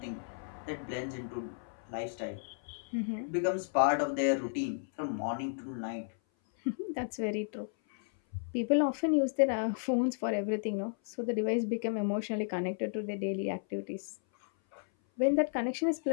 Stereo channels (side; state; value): right; silent; 56 dB below the other